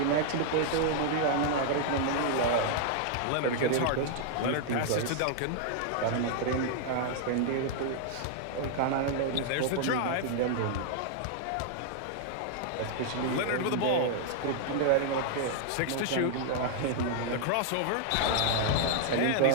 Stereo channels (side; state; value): both; different; correlation -0.01